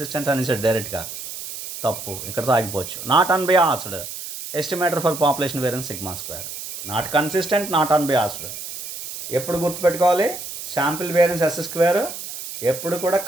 అని సార్ డైరెక్ట్గా, తప్పు, ఇక్కడతో ఆగిపోవచ్చు. Not unbiased estimator for population variance sigma square. Not consistent, not unbiased. ఎప్పుడు గుర్తుపెట్టుకోవాలి? శాంపిల్ వేరియన్స్ ఎస్ స్క్వేర్ ఎప్పుడు కూడా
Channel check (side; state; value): right; noise; hiss, 9 dB below the sound